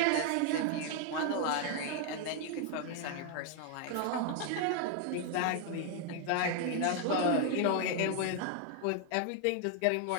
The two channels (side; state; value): both; different; correlation 0.01